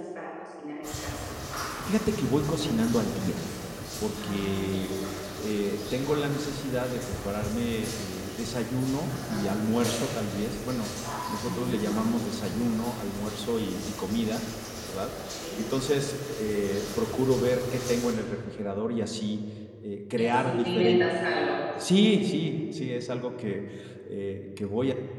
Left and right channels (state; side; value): identical; both; correlation 1.00